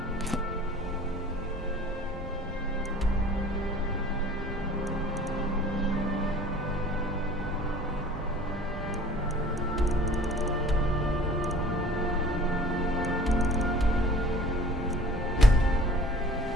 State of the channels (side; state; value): both; normal; correlation 0.48